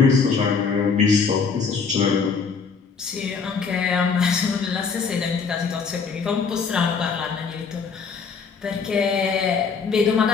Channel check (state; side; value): quieter; right; 5.5 dB